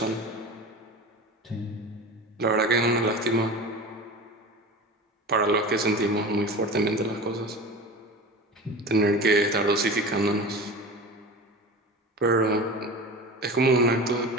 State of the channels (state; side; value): normal; both; correlation 0.32